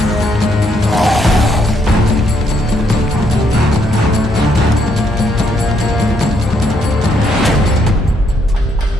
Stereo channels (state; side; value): normal; both; correlation 0.73